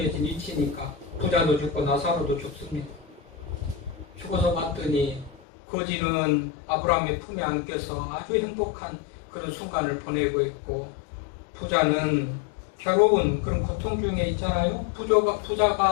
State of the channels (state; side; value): drops out; right; at 5.4 s